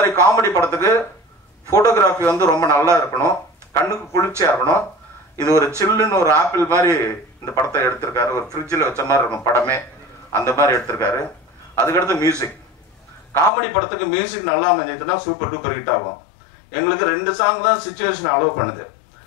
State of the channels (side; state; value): right; drops out; at 13.5 s